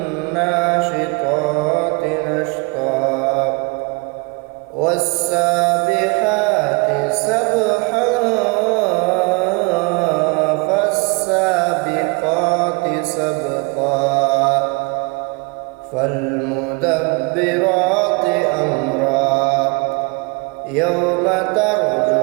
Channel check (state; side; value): quieter; left; 30.6 dB